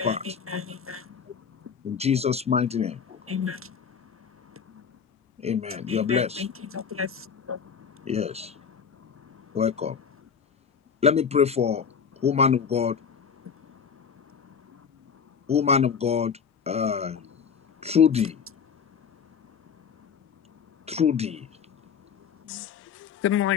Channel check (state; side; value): quieter; right; 6.7 dB